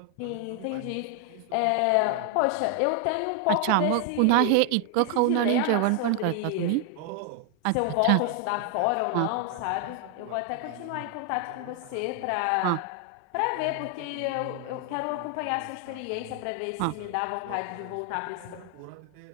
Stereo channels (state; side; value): different; both; correlation 0.00